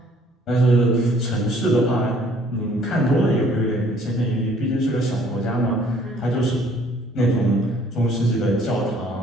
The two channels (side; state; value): both; normal; correlation 0.59